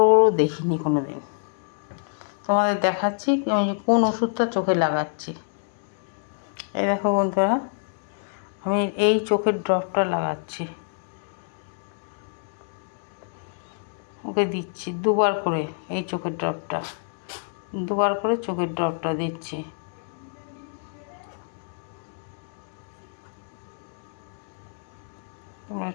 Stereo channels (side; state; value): right; silent; 60 dB below the other